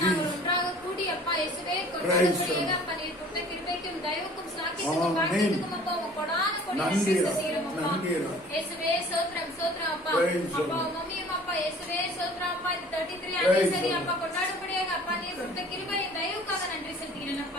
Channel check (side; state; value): both; normal; correlation 0.49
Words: Jesus. ஒன்றாக கூடி அப்பா இயேசுவே Praise கொண்டாடக்கூடிய the அப்பா நீர் கொடுத்த கிருபைக்கும் தயவுக்கும் ஸ்லாக்கியத்துக்கும் Amen. பாக்கியத்துக்கும் அப்பா உங்க கொடான கொடி நன்றி, நன்றி செலுத்துகிறோம் அப்பா. நன்றி. இயேசுவே ஸ்தோத்திரம் ஸ்தோத்திரம் அப்பா. Praise the அப்பா Lord. மம்மியும் அப்பா இயேசுவே ஸ்தோத்திரம் அப்பா. இந்த 33 Praise anniversary the அப்பா கொண்டாடும்படியாக அப்பா நீர் கொடுத்த கிருபையின் தயவுக்காக நன்றி செலுத்துகிறேன்